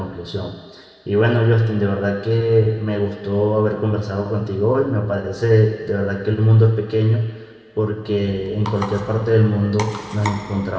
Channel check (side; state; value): both; identical; correlation 1.00